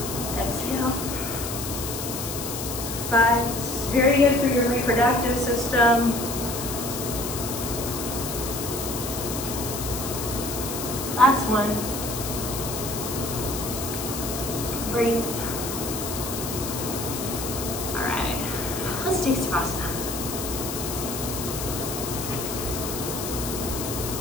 exhale. 5, this is very good for your reproductive system. Last one. Breathe. All right, let's take Savasana.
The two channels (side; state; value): left; noise; hiss, 6 dB below the sound